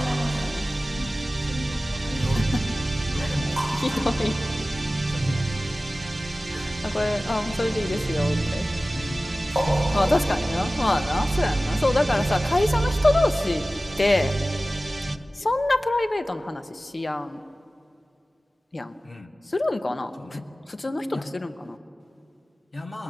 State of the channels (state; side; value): normal; both; correlation 0.96